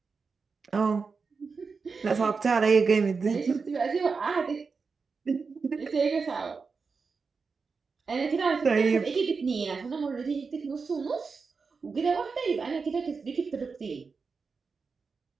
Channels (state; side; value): quieter; left; 4.9 dB